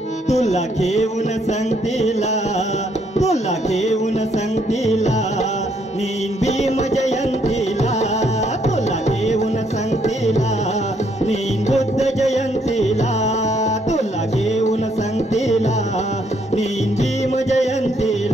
तुला घेऊन संगतीला, तुला घेऊन संगतीला, नीन भीम जयंतीला, तुला घेऊन संगतीला, नीन बुद्ध जयंतीला, तुला घेऊन संगतीला, नीन भीम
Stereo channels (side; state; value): both; normal; correlation 0.71